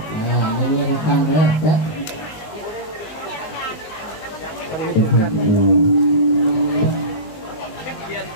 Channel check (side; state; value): right; late; 19 ms